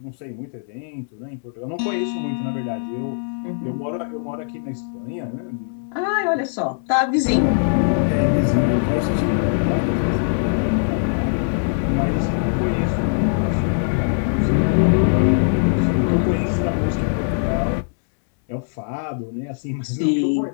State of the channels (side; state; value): right; silent; digital silence